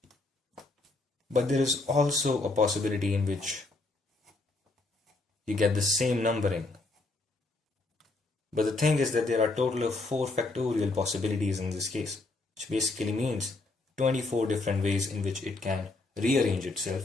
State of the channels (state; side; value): quieter; right; 3.2 dB